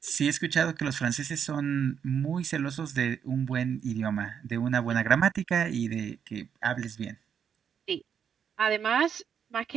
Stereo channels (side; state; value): left; quieter; 7.7 dB